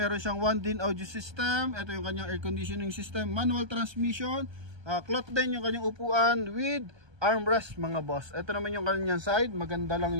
siyang 1-din audio system. Ito yung kanyang air conditioning system, manual transmission, cloth din yung kanyang upuan with armrest mga boss. Ito naman yung kanyang side, maganda lang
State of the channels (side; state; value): left; late; 1.2 ms